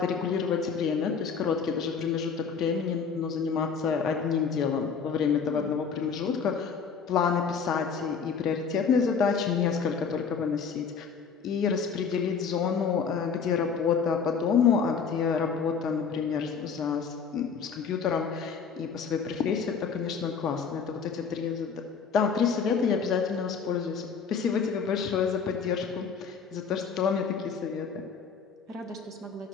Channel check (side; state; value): right; quieter; 6.0 dB